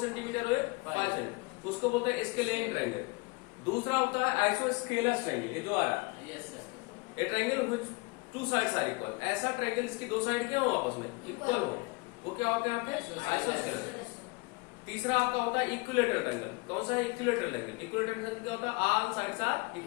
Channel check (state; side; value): quieter; right; 27.2 dB